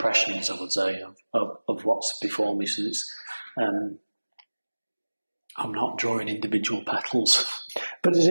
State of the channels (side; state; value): both; inverted; correlation -1.00